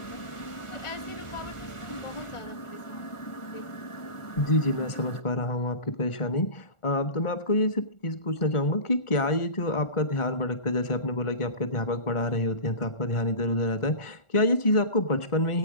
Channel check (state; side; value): late; right; 1.4 ms